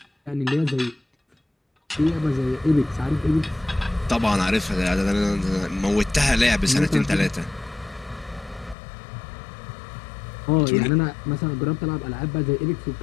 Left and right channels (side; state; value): right; drops out; at 8.8 s